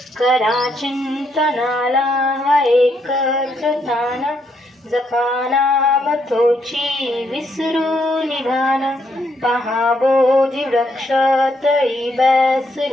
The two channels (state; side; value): normal; both; correlation 0.75